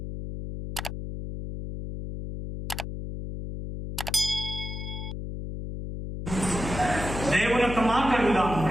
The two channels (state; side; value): noise; left; hum, 7 dB below the sound